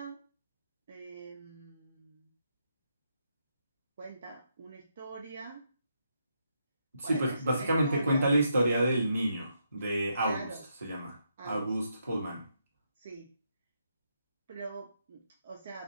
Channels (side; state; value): both; inverted; correlation -0.79